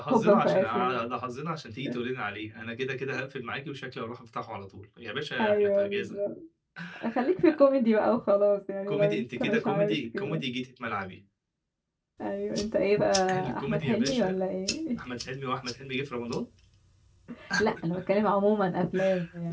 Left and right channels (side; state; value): both; identical; correlation 1.00